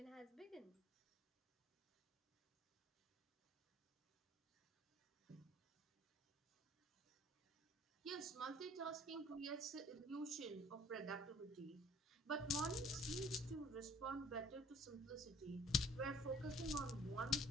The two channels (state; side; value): normal; both; correlation 0.53